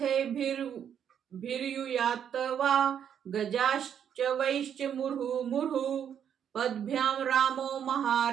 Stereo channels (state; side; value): quieter; left; 8.7 dB